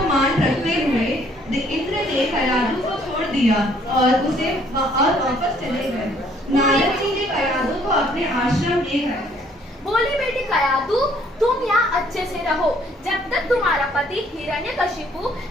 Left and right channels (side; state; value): both; normal; correlation 0.63